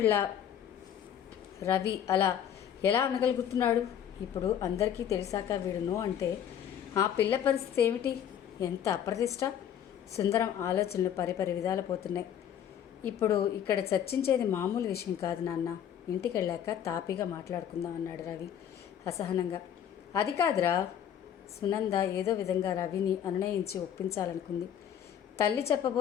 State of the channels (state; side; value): quieter; right; 9.5 dB